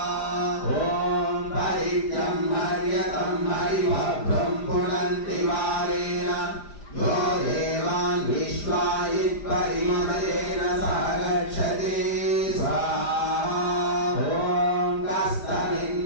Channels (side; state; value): right; late; 5.0 ms